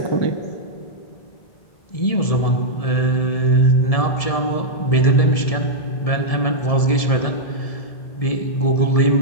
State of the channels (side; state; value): right; late; 1.7 ms